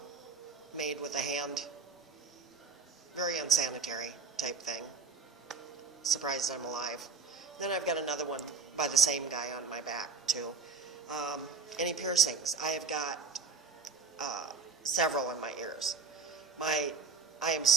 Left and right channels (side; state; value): left; quieter; 4.7 dB